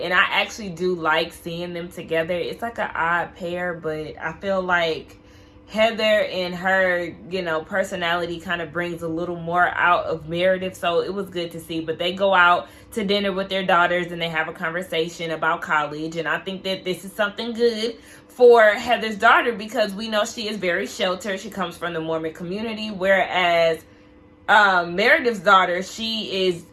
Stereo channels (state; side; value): identical; both; correlation 1.00